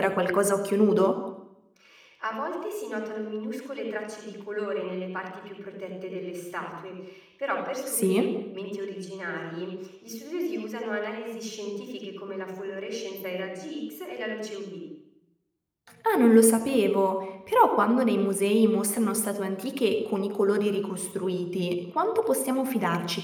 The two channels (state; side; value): identical; both; correlation 1.00